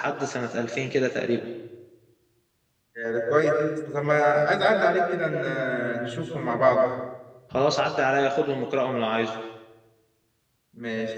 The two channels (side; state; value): both; identical; correlation 1.00